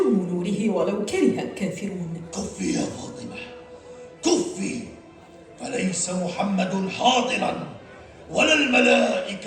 نوره ولو كره الكافرون. كفي يا فاطمة، كفي، فليس محمد حاضرا ولا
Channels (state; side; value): identical; both; correlation 1.00